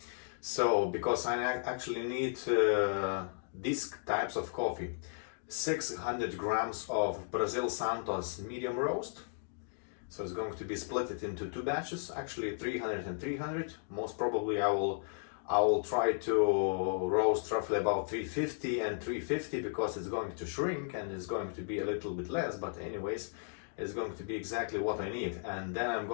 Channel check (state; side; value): silent; right; digital silence